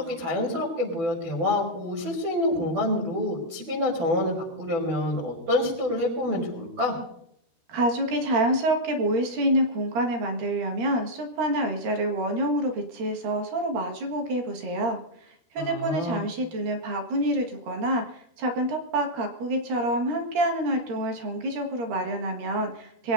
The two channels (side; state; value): left; late; 13 ms